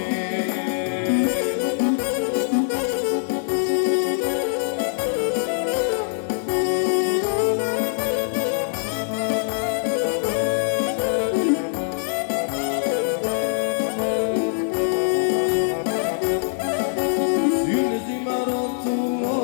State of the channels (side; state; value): right; silent; digital silence